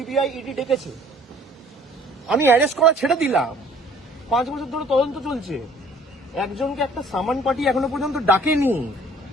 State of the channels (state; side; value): normal; both; correlation 0.55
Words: ইডি ডেকেছে? আমি অ্যারেস্ট করা ছেড়ে দিলাম, 5 বছর ধরে তদন্ত চলছে, একজনকে একটা সামান পার্টি এখনো পর্যন্ত ডাকেনি।